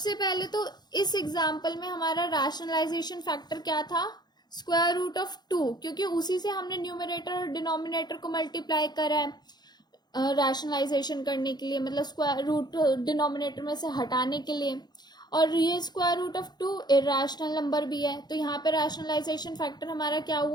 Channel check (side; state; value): right; late; 0.20 ms